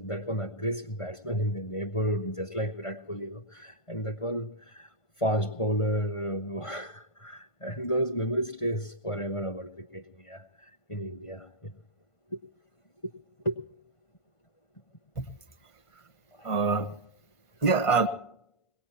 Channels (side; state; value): right; late; 1.5 ms